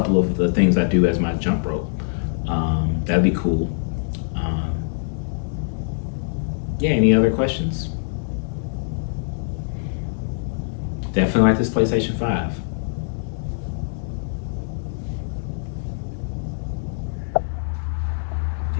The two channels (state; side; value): silent; right; digital silence